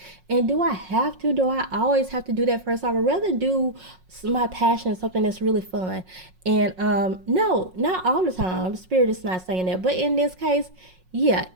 and do I have to? Do I always have to do that first? I would rather do my passion, something that's really fun. And no, not all the time. Spirit is not saying that, but in this case, yeah.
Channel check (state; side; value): late; left; 5.5 ms